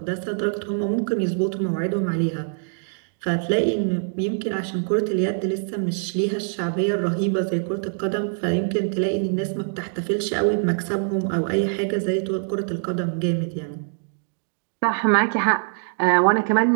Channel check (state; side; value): silent; left; digital silence